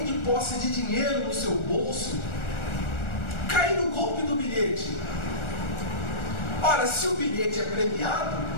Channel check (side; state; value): right; late; 1.4 ms